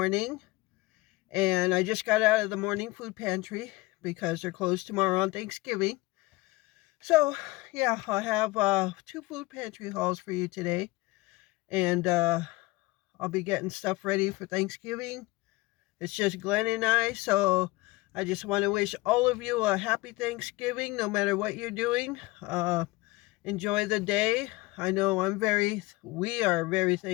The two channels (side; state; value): right; quieter; 21.5 dB